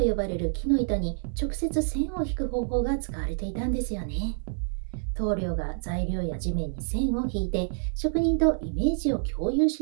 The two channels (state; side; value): silent; left; digital silence